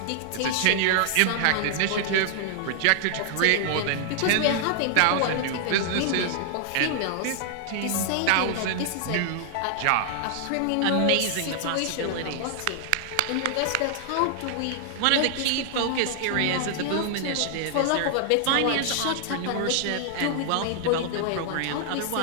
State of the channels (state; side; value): different; both; correlation 0.00